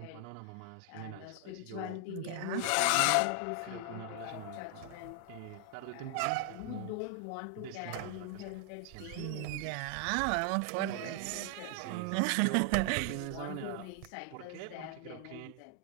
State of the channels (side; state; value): both; different; correlation 0.00